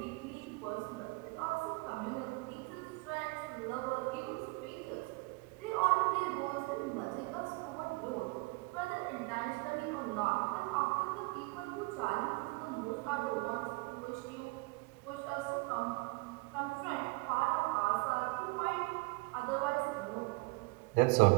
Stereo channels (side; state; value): left; quieter; 26.7 dB